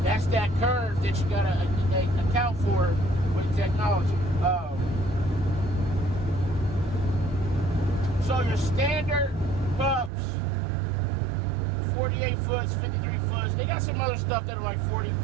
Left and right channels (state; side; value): drops out; left; at 10.1 s